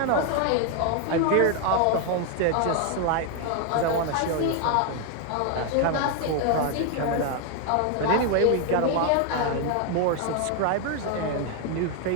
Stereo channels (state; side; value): different; both; correlation 0.01